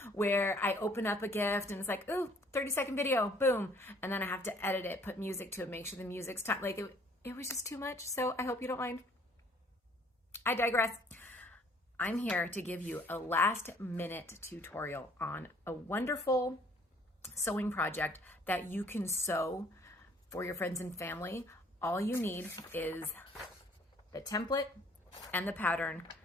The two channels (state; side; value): normal; both; correlation 0.59